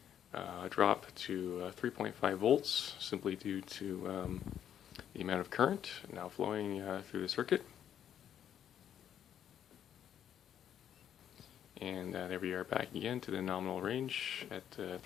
a drop to 3.5 volts simply due to the amount of current now flowing through the circuit. And there we are back again to the nominal range at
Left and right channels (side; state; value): right; quieter; 9.7 dB